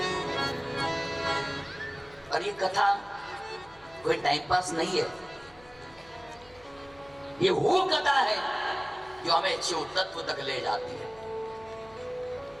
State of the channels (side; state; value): left; noise; hum, 26 dB below the sound